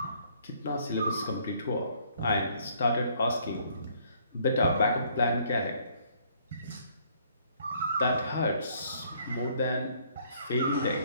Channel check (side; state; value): both; inverted; correlation -0.63